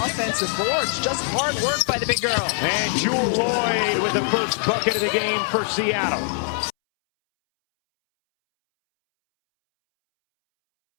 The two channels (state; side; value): silent; right; 64 dB below the other